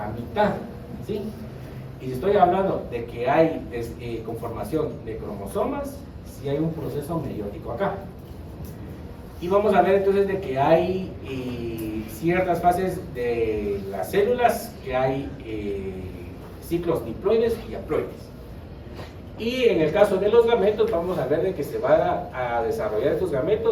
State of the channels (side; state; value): both; identical; correlation 1.00